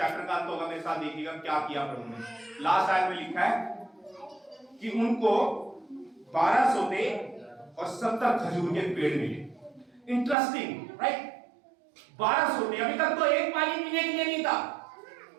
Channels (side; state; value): left; drops out; at 10.4 s